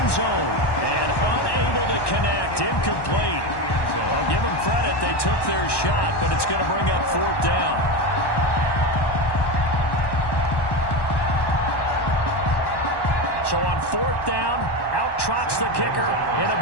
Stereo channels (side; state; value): right; late; 1.1 ms